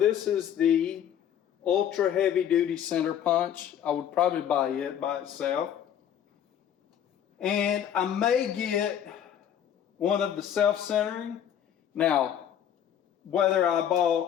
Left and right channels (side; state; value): right; quieter; 9.6 dB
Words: is the ultra heavy duty center punch. I would probably buy it by itself. And I may get one of the self-centering. Now, whether I